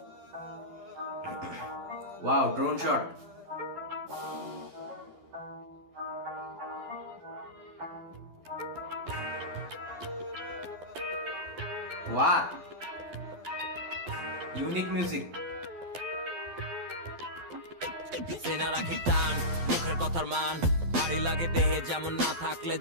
Wow, drone shot. What? Unique music. সেনা রাখি টান, মুখের কথার মান ভারী লাগে দেহে, যেমন না থাকলে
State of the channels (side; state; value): left; late; 12 ms